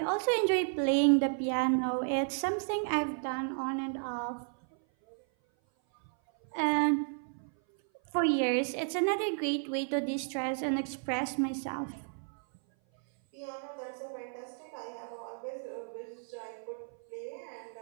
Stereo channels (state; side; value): silent; left; 56 dB below the other